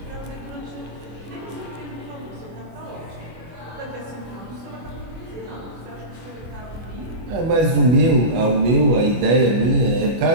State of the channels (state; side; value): late; left; 25 ms